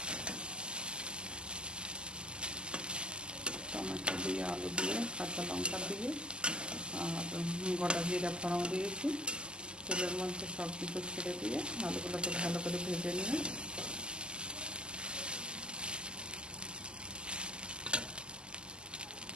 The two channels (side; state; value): left; late; 0.048 ms